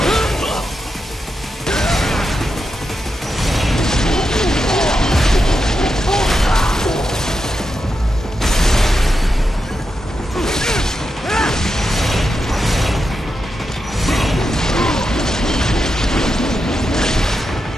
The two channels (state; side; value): normal; both; correlation 0.87